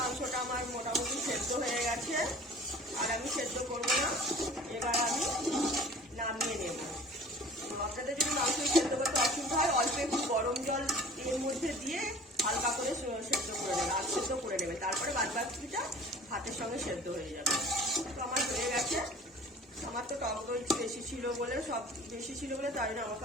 আমার মোটামুটি সেদ্ধ হয়ে গেছে, আর আমি সেদ্ধ করবো না। এবার আমি নামিয়ে নেব। আপনাদের যদি মাংস সেদ্ধ করতে অসুবিধা হয় অল্প একটু গরম জল এর মধ্যে দিয়ে হালকা করে সেদ্ধ করে নেবে, আর সেদ্ধ করে নেবে, তারপরে বাদ বাকিটা ভাতের সঙ্গে সেদ্ধ হয়ে যাবে। তো আমার হয়ে গেছে। আমার তো টক দই বেশি ছিল বলে তাই জন্য আমাকে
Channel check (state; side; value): normal; both; correlation 0.46